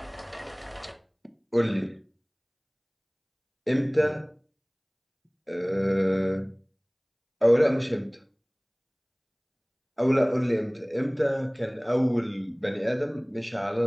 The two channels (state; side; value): identical; both; correlation 1.00